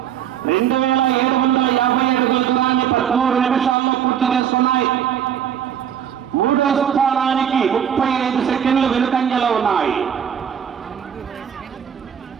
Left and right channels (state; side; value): quieter; left; 8.9 dB